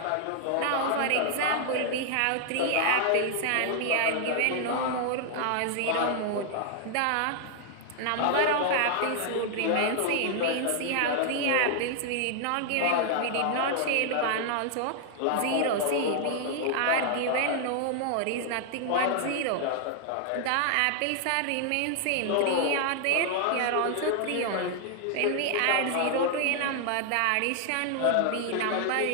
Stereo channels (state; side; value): different; both; correlation 0.00